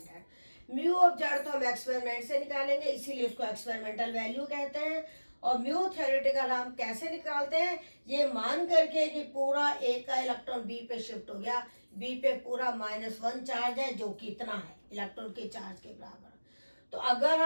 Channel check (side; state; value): both; inverted; correlation -1.00